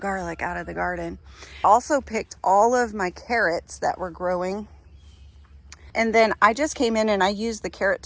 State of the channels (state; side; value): identical; both; correlation 1.00